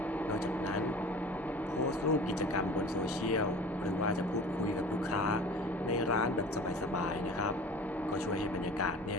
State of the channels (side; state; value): both; normal; correlation 0.40